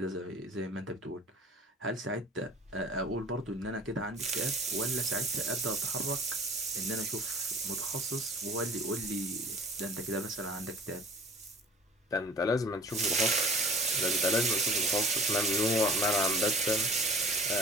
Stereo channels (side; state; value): both; normal; correlation 0.45